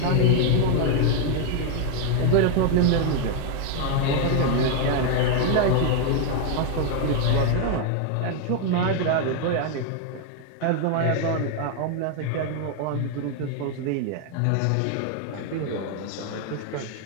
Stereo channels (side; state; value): both; different; correlation 0.01